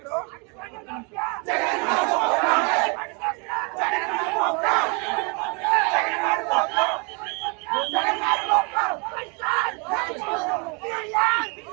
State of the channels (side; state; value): left; quieter; 33.2 dB